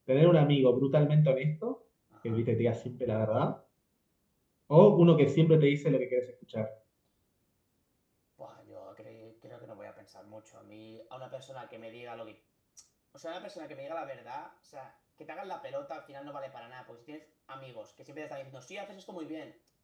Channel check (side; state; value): both; identical; correlation 1.00